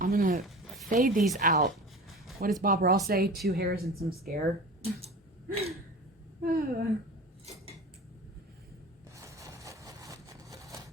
I'm gonna fade these out. What does Bob Ross say? 2 hairs and some scare. There.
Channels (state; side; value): normal; both; correlation 0.35